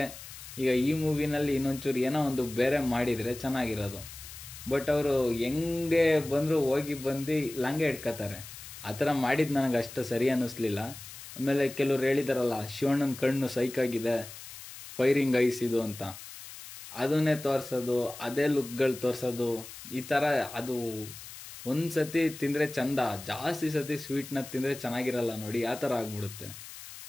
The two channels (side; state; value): left; noise; hiss, 14 dB below the sound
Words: ಈಗ ಈ ಮೂವಿನಲ್ಲಿ ಇನ್ನೊಂಚೂರು ಏನೋ ಒಂದು ಬೇರೆ ಮಾಡಿದರೆ ಚೆನ್ನಾಗಿರೋದು. ಬಟ್ ಅವರು ಹೆಂಗೆ ಬಂದರೂ ಹೋಗಿ ಬಂದು ಲಾಂಗೆ ಹಿಡ್ಕೋತಾರೆ. ಆ ಥರ ಮಾಡಿದ್ದು ನನಗೆ ಅಷ್ಟು ಸರಿ ಅನ್ನಿಸ್ಲಿಲ್ಲ. ಆಮೇಲೆ ಕೆಲವ್ರು ಹೇಳಿದಾರಲ್ಲ, ಶಿವಣ್ಣನ ಕಣ್ಣು ಸೈಕಾಗಿದೆ, ಫೈರಿಂಗ್ ಐಸ್ ಇದು ಅಂತ, ಅದನ್ನೇ ತೋರಿಸೋದು, ಅದೇ ಲುಕ್ಗಳು ತೋರಿಸೋದು, ಈ ಥರ ಅದು ಒಂದು ಸತಿ ತಿಂದರೆ ಚಂದ, ಜಾಸ್ತಿ ಸತಿ ಸ್ವೀಟ್ನ ತಿಂದರೆ ಚೆನ್ನಾಗಿರಲ್ಲ ನೋಡಿ, ಆ ಥರ ಆಗ್ಬಿಡುತ್ತೆ.